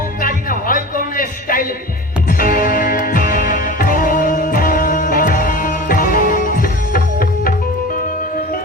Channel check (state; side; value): normal; both; correlation 0.34